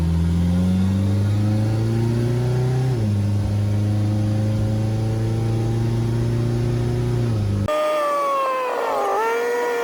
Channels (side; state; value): both; identical; correlation 1.00